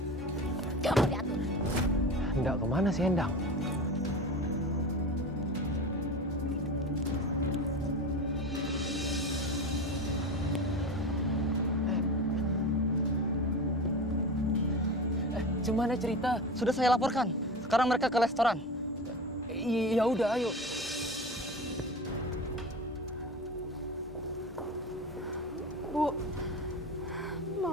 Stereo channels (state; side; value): normal; both; correlation 0.29